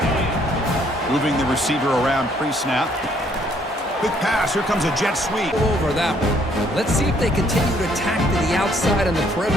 Moving the receiver around pre-snap. Quick pass. Here comes a jet sweep. Over that one. Let's see if they continue to attack to the outside on the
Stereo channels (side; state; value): both; normal; correlation 0.66